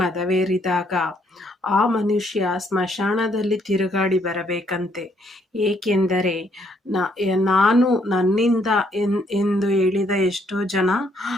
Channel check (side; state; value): both; normal; correlation 0.70